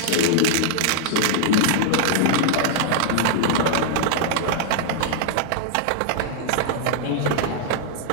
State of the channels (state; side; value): different; both; correlation -0.01